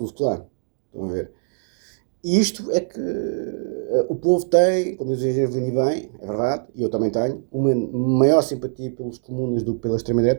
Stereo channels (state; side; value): silent; left; digital silence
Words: Klan. Estão a ver? E isto é que o povo tem, como diz o Gervini bem, é verdade, e eu também tenho, uma maior simpatia pelos comunas do que pela